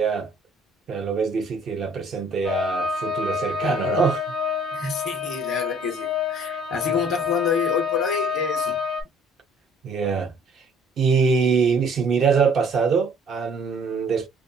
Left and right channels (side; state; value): both; normal; correlation 0.57